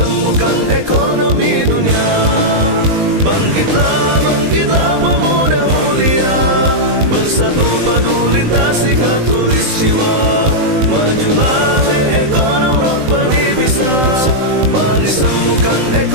ekonomi dunia. Bangkitlah, bangkitlah pemuda mulia, bersatu padu lintasi khatulistiwa. Majulah hei ekonom Rabbani bisa, mari sembuhkan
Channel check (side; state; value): left; late; 19 ms